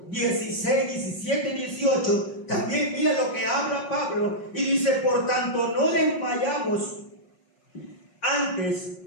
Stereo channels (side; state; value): right; late; 5.5 ms